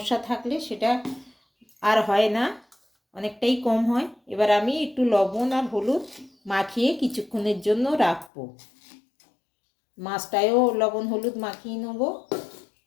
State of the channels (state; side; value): drops out; right; at 8.3 s